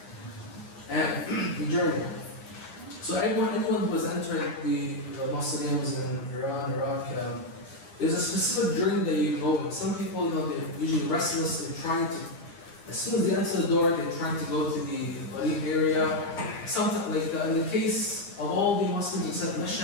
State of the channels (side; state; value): right; late; 9.8 ms